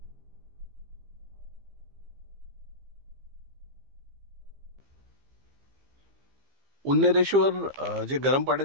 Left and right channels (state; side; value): late; left; 15 ms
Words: उन्नरेश्वर जे गरम